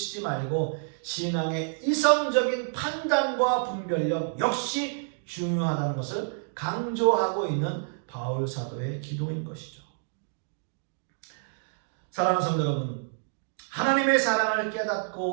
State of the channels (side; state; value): left; silent; digital silence